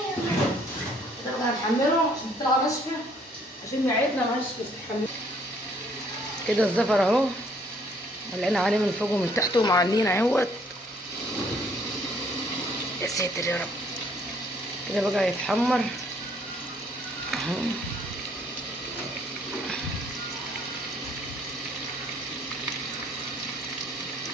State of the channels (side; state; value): both; normal; correlation 0.63